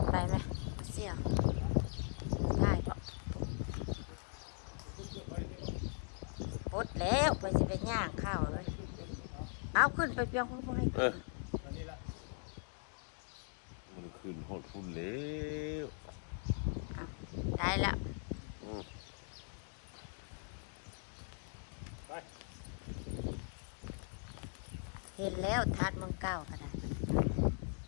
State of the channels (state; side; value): silent; right; 51 dB below the other